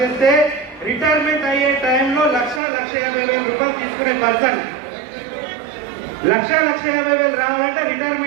చేస్తే రిటైర్మెంట్ అయ్యే టైంలో 1,50,000 రూపాయలు తీసుకునే పర్సన్. 1,50,000 రావాలంటే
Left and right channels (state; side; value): drops out; left; at 2.6 s